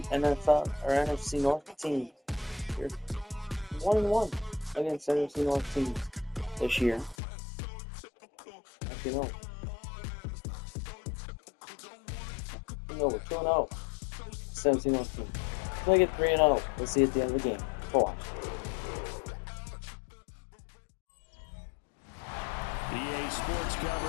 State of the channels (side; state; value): right; drops out; at 7.2 s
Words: NFL or NFC North teams. They're 1-1 against NFC North teams this year. Actually, no. No, we're 2-0. NFC North team. We'll get 3-0. We'll see at the end of the game. Watch. EA Sports